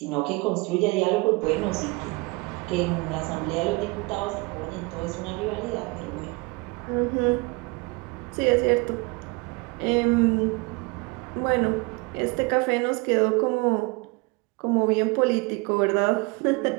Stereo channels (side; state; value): left; quieter; 26.5 dB